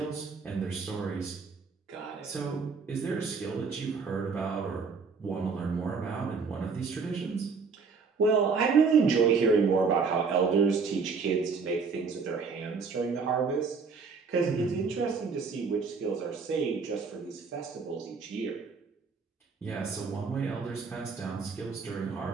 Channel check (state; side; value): quieter; left; 5.1 dB